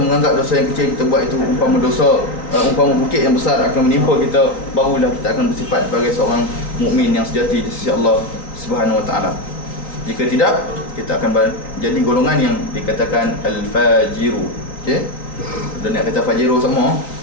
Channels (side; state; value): right; late; 3.8 ms